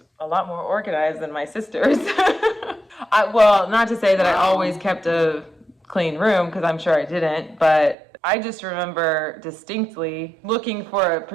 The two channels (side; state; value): left; drops out; at 8.0 s